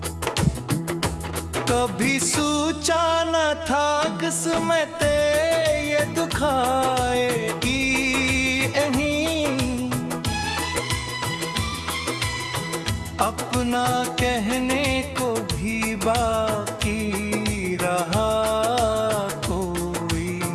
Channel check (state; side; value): identical; both; correlation 1.00